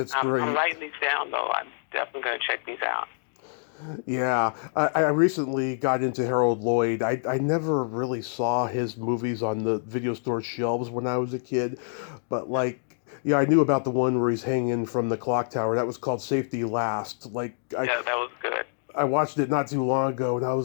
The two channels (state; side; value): silent; right; digital silence